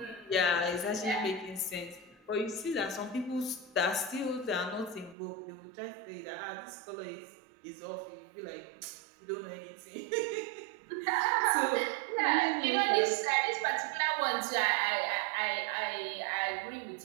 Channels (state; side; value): drops out; left; at 5.2 s